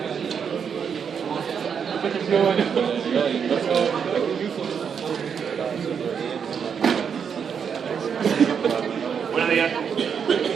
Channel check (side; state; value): left; quieter; 7.0 dB